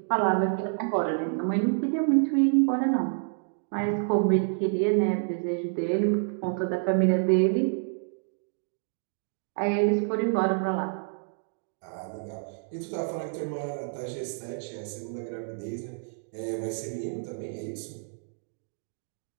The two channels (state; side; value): silent; left; digital silence